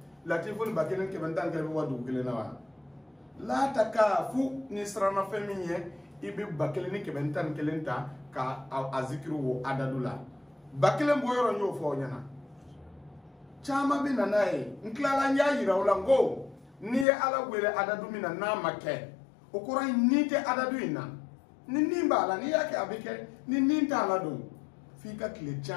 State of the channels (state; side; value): drops out; right; at 17.1 s